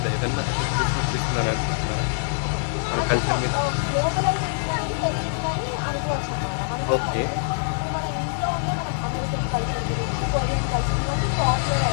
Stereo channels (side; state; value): right; silent; 62 dB below the other